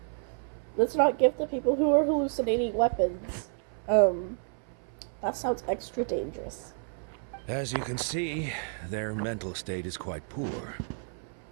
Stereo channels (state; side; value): silent; left; 58 dB below the other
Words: let's not give the people who are hallucinating weapons. That sounds extra dangerous. As you can see, their mental state is quite poor.